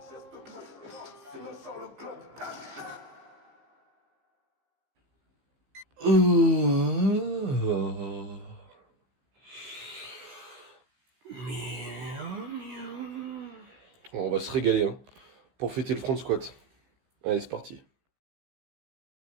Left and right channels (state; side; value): late; left; 15 ms